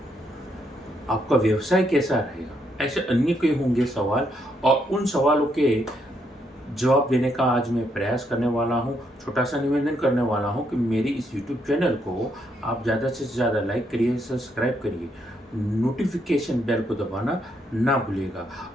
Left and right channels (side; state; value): both; normal; correlation 0.76